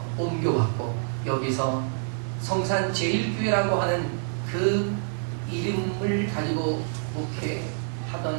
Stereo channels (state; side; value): silent; left; 57 dB below the other